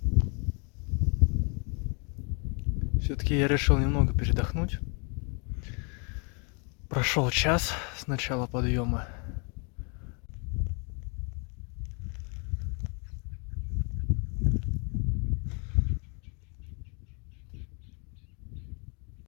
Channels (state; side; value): quieter; right; 35.9 dB